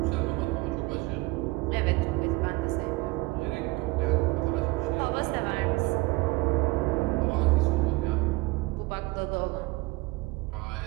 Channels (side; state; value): left; quieter; 22.8 dB